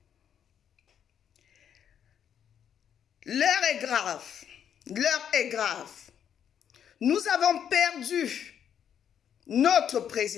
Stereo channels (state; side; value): quieter; right; 8.8 dB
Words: L'heure est grave, l'heure est grave. Nous avons perdu notre